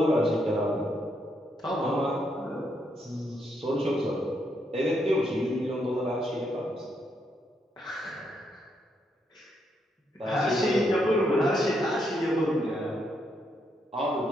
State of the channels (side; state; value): both; normal; correlation 0.77